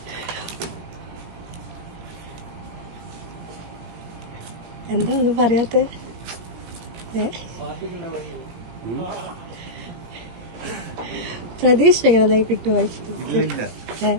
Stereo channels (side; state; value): left; late; 17 ms